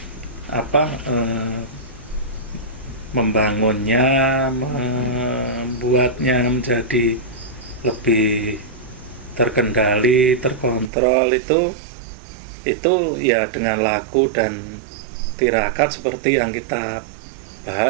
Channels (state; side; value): drops out; left; at 10.9 s